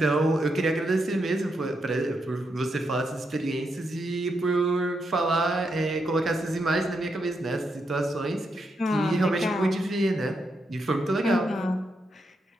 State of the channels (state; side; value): normal; both; correlation 0.82